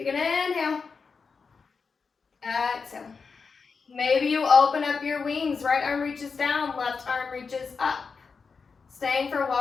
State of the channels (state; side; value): quieter; right; 5.1 dB